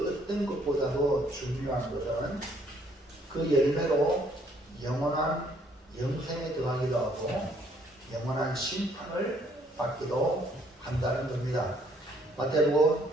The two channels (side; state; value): both; normal; correlation 0.65